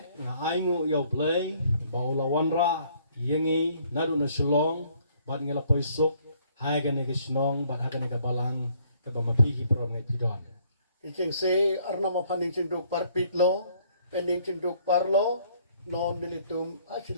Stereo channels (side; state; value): both; inverted; correlation -0.64